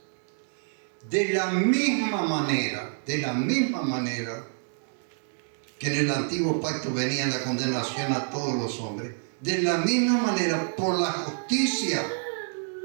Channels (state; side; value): silent; left; 60 dB below the other